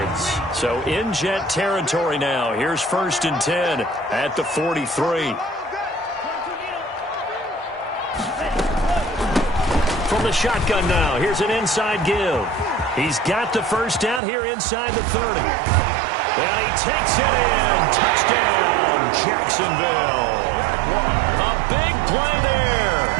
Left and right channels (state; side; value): drops out; left; at 14.2 s